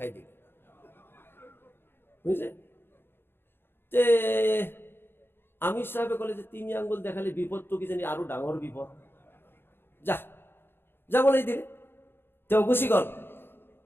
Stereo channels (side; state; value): right; late; 0.11 ms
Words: দিল, বুঝছে? তে আমির সাহেবে কলে যে 3 আঙ্গুল দেখালে বিপদ তো কি জানি আরো ডাঙর বিপদ, যা বলেই দিলে। তেও গুচি গল,